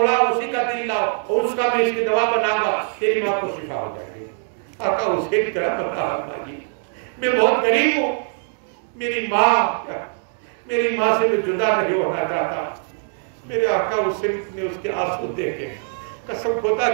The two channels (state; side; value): silent; left; 56 dB below the other